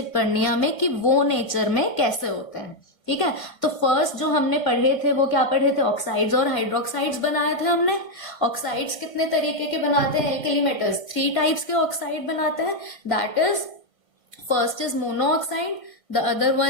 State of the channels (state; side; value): late; right; 2.0 ms